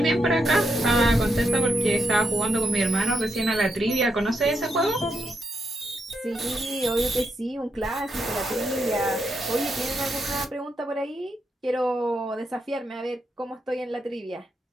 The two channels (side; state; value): both; normal; correlation 0.81